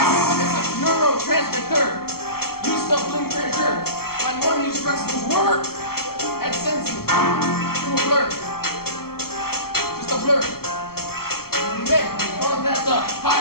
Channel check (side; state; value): right; late; 0.94 ms